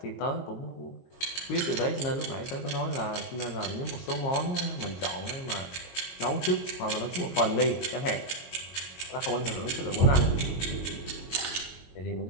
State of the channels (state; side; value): late; right; 22 ms